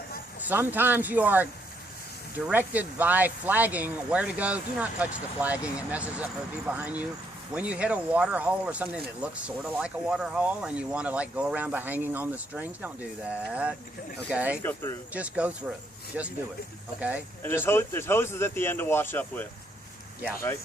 sometimes you are directed by flagging where to go. Do not touch the flagging. It messes up for the people behind you. When you hit a water hole or something that looks sort of like a water hole and you want to like go around by hanging on the strings, don't do that. Okay? Just go through. Just go through. Just do it. Okay? And there's hoses at the end to wash up with. Yeah. Right?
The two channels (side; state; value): both; normal; correlation 0.72